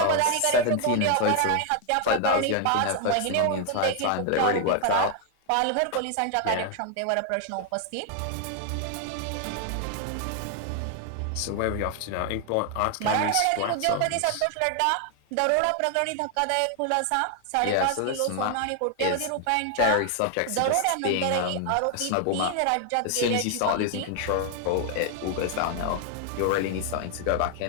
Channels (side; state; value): both; different; correlation 0.00